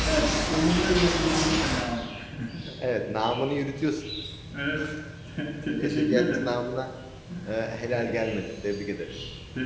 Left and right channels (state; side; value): identical; both; correlation 1.00